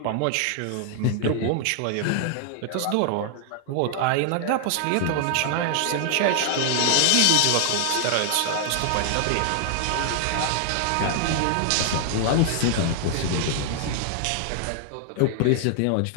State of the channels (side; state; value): both; different; correlation 0.00